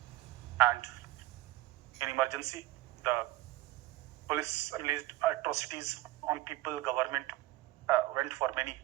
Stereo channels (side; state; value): left; quieter; 17.2 dB